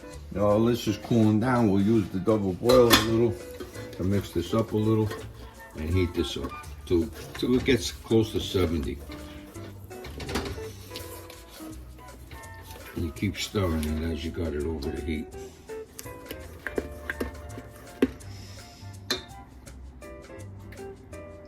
is cooling down, we'll use the double boiler a little to mix this up a little and heat this up till it gets close to 70. And you keep stirring it as you got it over the heat.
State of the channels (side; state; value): both; identical; correlation 1.00